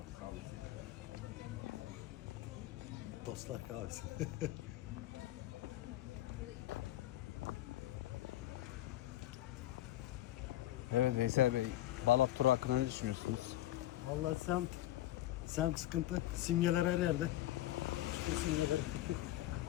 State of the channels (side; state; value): right; quieter; 14.5 dB